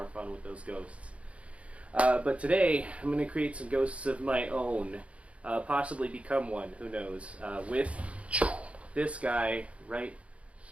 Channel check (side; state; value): left; late; 0.063 ms